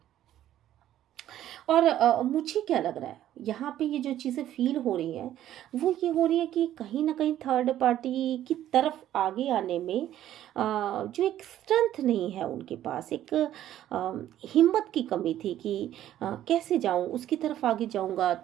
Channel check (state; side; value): quieter; left; 12.3 dB